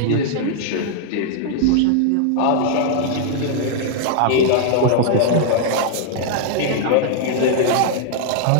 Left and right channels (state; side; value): different; both; correlation -0.01